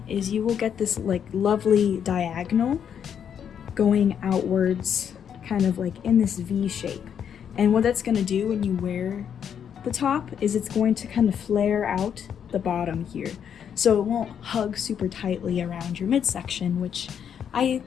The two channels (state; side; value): quieter; right; 8.3 dB